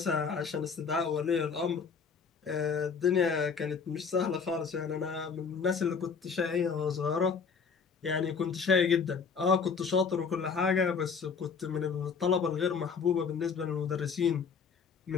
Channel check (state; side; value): quieter; right; 5.8 dB